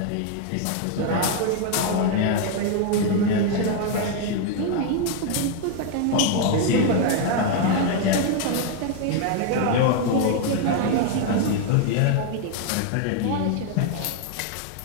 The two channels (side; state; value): both; different; correlation 0.00